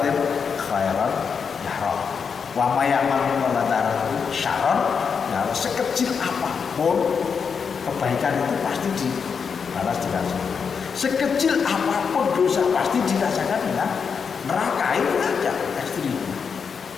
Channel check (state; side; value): quieter; right; 6.1 dB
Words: khairan yarah, wa ma ya'mal misqala dzarratin syarran yarah. Sekecil apapun kebaikan itu pasti dibalas dirasakan. Sekecil apapun dosa pasti dirasakan ya. Neraka itu aja ekstrim.